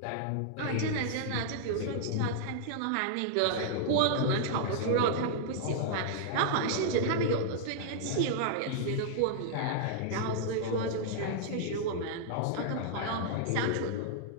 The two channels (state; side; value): different; both; correlation -0.01